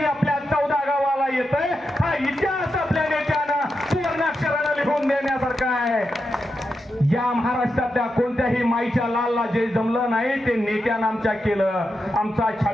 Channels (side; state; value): both; normal; correlation 0.87